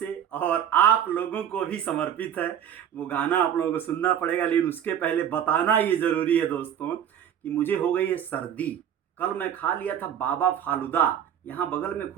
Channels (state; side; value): quieter; left; 9.4 dB